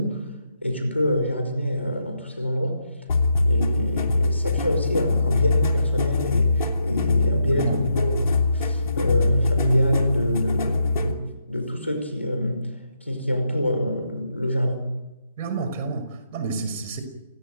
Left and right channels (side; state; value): both; inverted; correlation -0.81